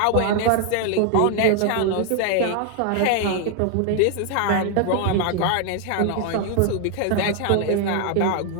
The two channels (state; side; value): different; both; correlation 0.00